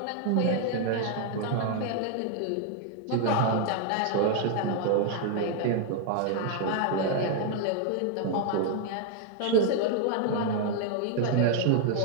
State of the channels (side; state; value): both; different; correlation 0.00